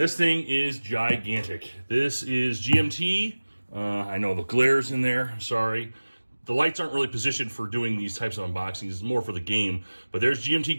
thing is gigantic. This is GMT. I know the glare's in there, sorry. The lights aren't really positioned for doing these types of unboxings, it's more for the game. But there's GMT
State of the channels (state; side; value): inverted; both; correlation -1.00